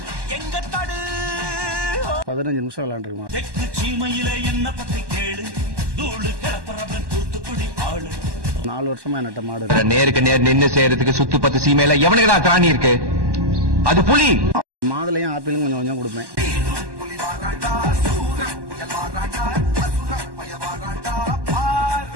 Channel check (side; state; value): left; late; 1.1 ms